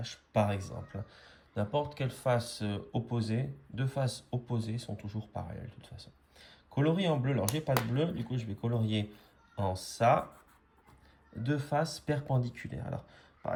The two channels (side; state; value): both; identical; correlation 1.00